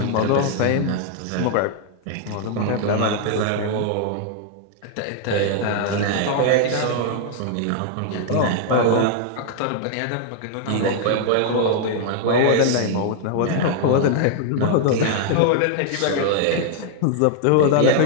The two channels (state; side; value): different; both; correlation 0.00